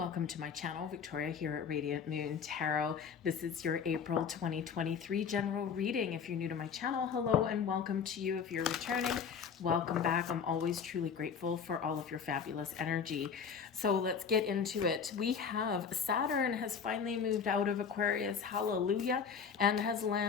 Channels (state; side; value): quieter; right; 6.5 dB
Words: to my channel. Victoria here at Radiant Moon Tarot. This is your April 2023 general reading. If you're new to my channel, hello and welcome to you. If you're returning, welcome back. I'm always truly grateful for all of your fabulous energy. So let's get into it. We have Saturn has finally moved out of Aquarius, hallelujah, and has